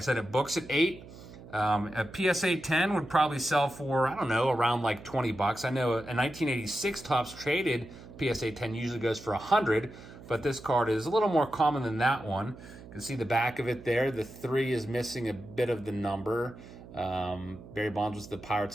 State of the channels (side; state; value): right; noise; hum, 17 dB below the sound